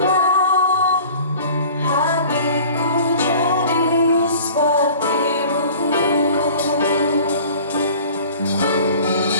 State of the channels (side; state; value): both; inverted; correlation -0.45